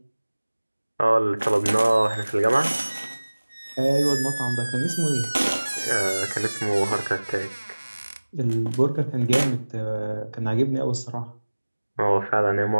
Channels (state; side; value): inverted; both; correlation -1.00